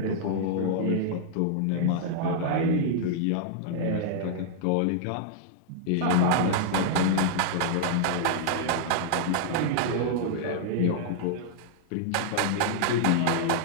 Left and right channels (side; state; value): both; different; correlation -0.01